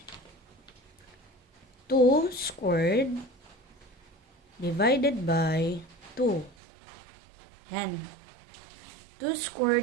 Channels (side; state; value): left; drops out; at 6.6 s